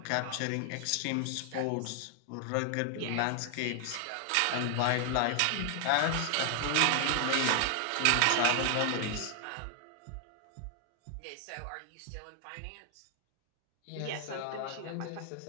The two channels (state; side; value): different; both; correlation 0.00